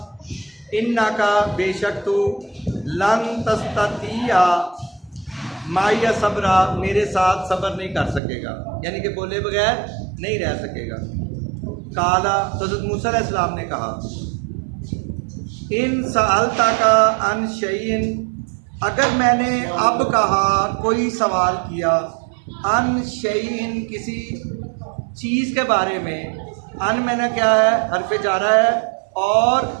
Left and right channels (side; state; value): left; drops out; at 8.2 s